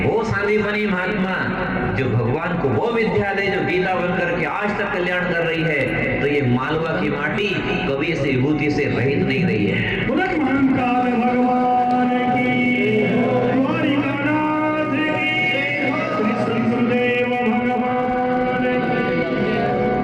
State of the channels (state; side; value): identical; both; correlation 1.00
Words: वो सांदीपनी महात्मा जो भगवान को वो विद्या दे जो गीता बनकर के आज तक कल्याण कर रही है, तो ये मालवा की माटी कभी इस विभूति से रहित नहीं रही है। भगवान की